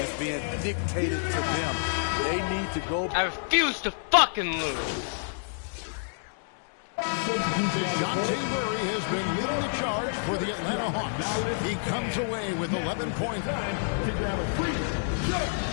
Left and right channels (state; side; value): silent; right; digital silence